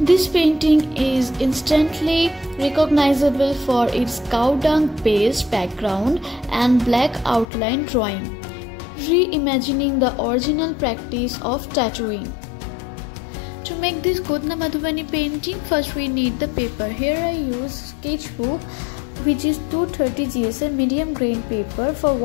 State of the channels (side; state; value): right; drops out; at 7.5 s